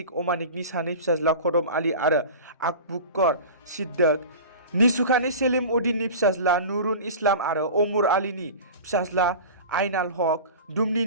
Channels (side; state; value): both; inverted; correlation -0.35